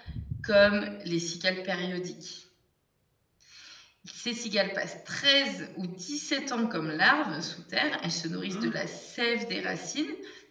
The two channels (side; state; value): both; identical; correlation 1.00